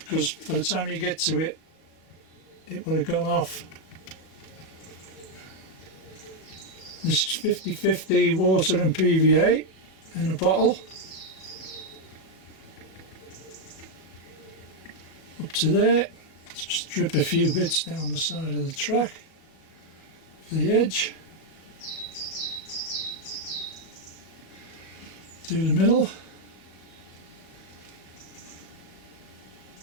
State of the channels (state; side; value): late; right; 37 ms